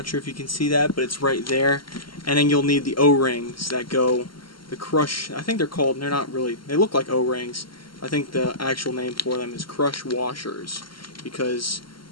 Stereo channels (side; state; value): right; late; 0.73 ms